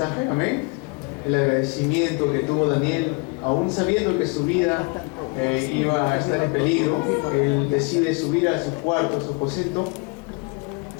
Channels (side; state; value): right; quieter; 30.1 dB